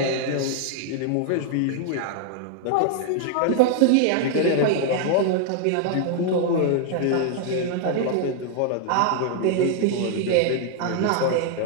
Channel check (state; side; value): different; both; correlation 0.00